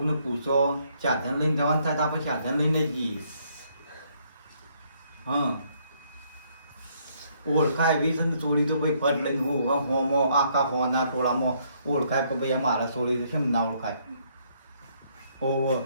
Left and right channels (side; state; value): both; inverted; correlation -0.69